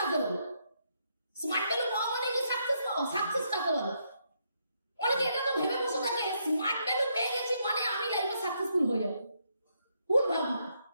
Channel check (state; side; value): inverted; both; correlation -0.76